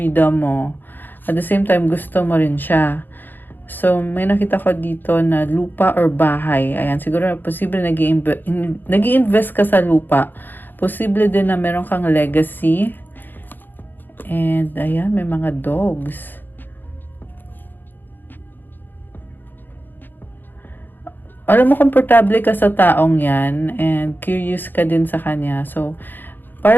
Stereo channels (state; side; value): late; right; 0.091 ms